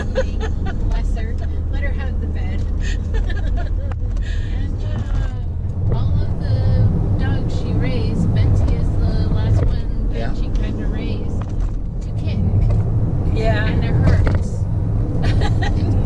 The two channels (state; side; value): identical; both; correlation 1.00